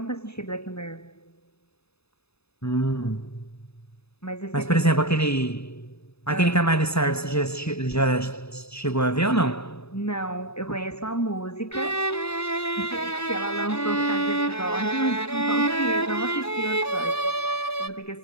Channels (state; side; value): late; right; 0.79 ms